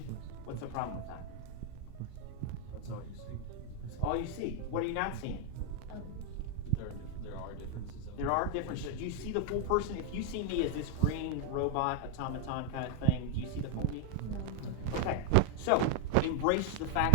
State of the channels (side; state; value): both; different; correlation 0.01